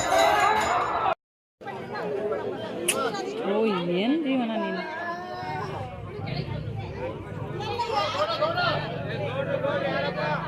ಏನು ಜೀವನ ನೀನು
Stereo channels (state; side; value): identical; both; correlation 1.00